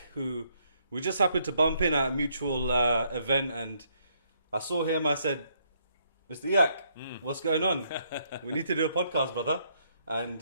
who we just happened to bump in at a mutual event, and I saw him. I said, Mr. Iyak, what's going on? We need to do a podcast, brother.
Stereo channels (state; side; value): inverted; both; correlation -0.72